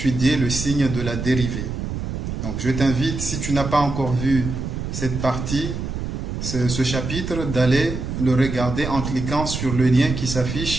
le signe de la dérivée. Donc je t'invite, si tu n'as pas encore vu cette partie, ce chapitre, d'aller le regarder en cliquant sur le lien qui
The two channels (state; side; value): noise; right; rumble, 4 dB below the sound